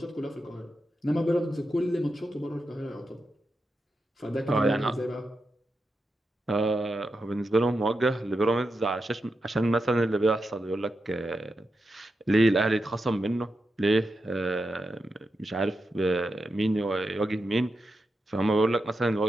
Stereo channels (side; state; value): both; normal; correlation 0.88